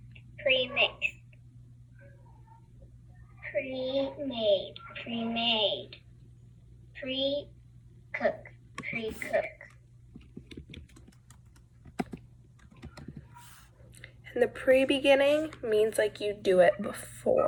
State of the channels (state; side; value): identical; both; correlation 1.00